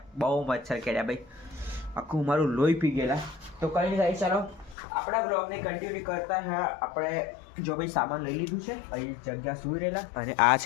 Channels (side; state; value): right; drops out; at 4.8 s